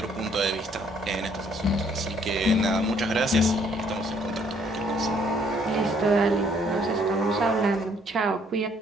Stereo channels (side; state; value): both; normal; correlation 0.65